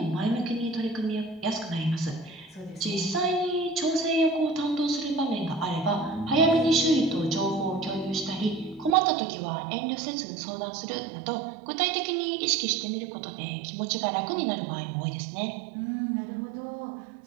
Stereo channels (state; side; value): drops out; left; at 9.0 s